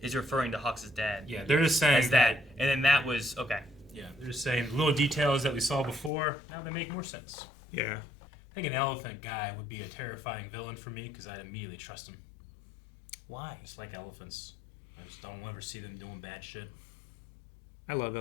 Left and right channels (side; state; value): right; drops out; at 6.1 s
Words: is referring to Hawks' dad. Yeah, they're just saying As that. And then that was... Okay. Yeah, they're just saying little details that we saw before, now they make more sense. Yeah. I think an elephant guy would be a terrifying villain for me because I'd immediately trust him. Why? Just like elephants. I just don't ever see them doing bad shit. I love